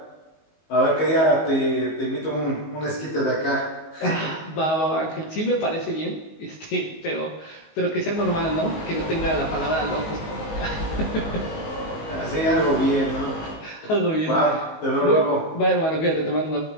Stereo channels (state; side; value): late; right; 19 ms